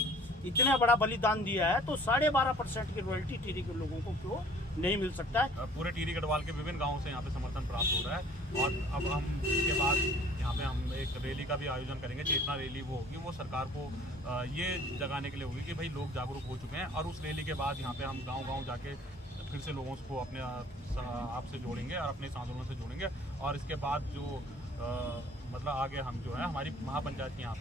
इतना बड़ा बलिदान दिया है, तो 12.5% की रॉयल्टी टिहरी के लोगों को क्यों नहीं मिल सकता है। पूरे टिहरी गढ़वाल के विभिन्न गांवों से यहाँ पे समर्थन प्राप्त हो रहा है और अब हम इसके बाद यहाँ पे हम एक रैली का भी आयोजन करेंगे। चेतना रैली वो होगी, वो सरकार को ये जगाने के लिए होगी कि भाई लोग जागरूक हो चुके हैं, और उस रैली के बाद यहाँ पे हम गाँव जाके फिर से लोगों को अपने आप से जोड़ेंगे और अपने आंदोलन से जोड़ेंगे। और इसके बाद जो मतलब आगे हम जो है, हमारी महापंचायत की यहाँ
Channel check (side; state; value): both; normal; correlation 0.52